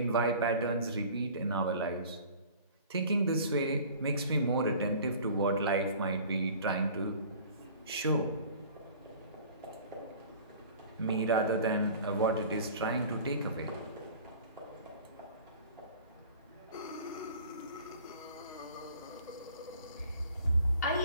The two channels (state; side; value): inverted; both; correlation -0.46